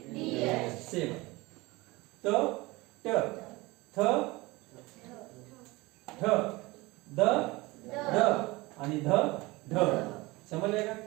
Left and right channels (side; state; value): left; quieter; 22.1 dB